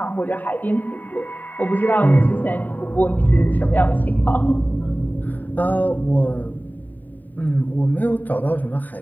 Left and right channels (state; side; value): late; right; 0.086 ms